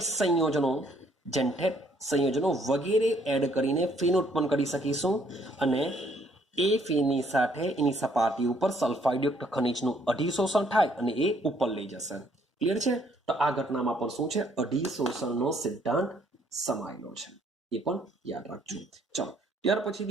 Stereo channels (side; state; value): both; normal; correlation 0.65